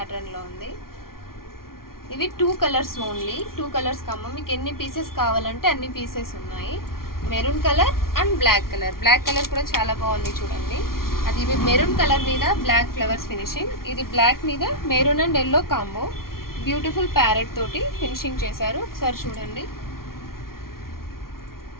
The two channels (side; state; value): right; late; 0.93 ms